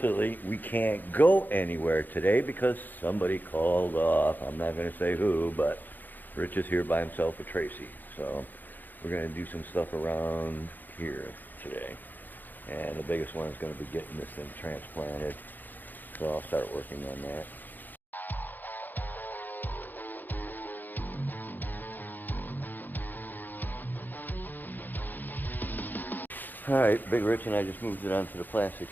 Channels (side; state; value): right; late; 0.087 ms